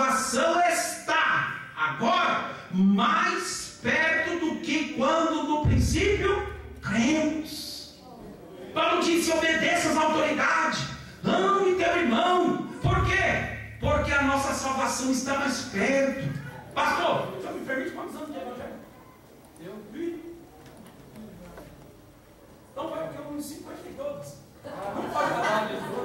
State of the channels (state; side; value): identical; both; correlation 1.00